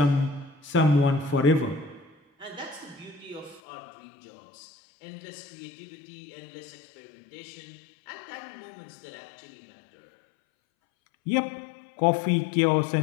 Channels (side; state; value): right; drops out; at 3.6 s